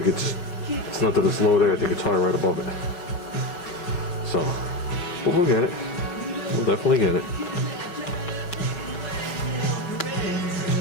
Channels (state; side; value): late; right; 5.6 ms